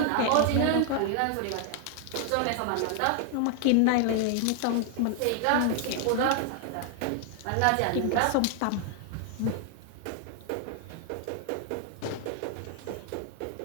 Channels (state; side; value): different; both; correlation 0.00